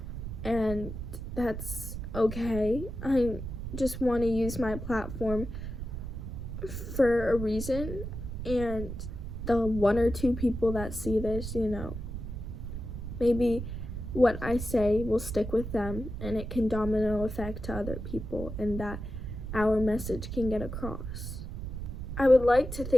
and that's okay. I just want to use my platform for a reason, and the one or two people that see this, maybe what I say will stick with them and it can domino effect to other people and that our message can get across. I would like to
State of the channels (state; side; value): noise; right; rumble, 7 dB below the sound